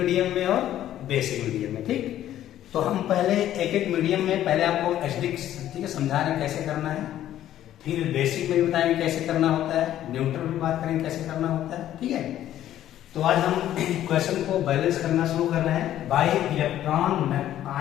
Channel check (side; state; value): right; quieter; 12.2 dB